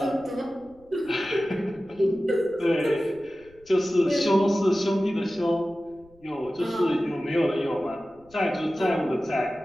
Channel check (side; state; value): left; noise; rumble, 29 dB below the sound